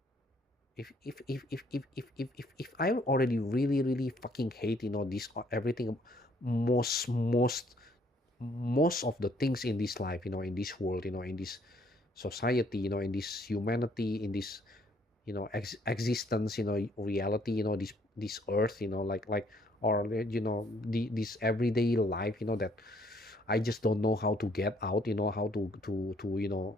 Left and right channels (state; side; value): normal; both; correlation 0.65